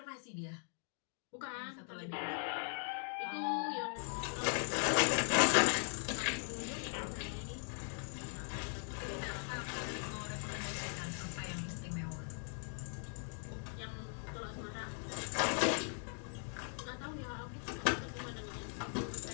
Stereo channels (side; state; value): right; silent; 51 dB below the other